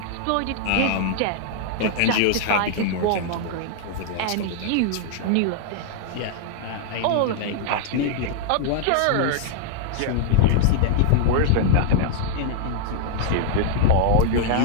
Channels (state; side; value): different; both; correlation -0.01